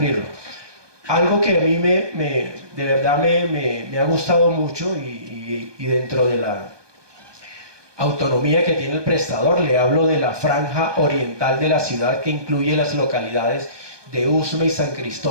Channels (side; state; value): left; late; 1.2 ms